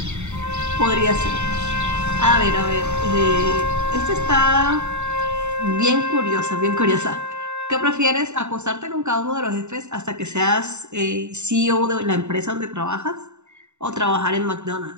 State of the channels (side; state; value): left; late; 0.83 ms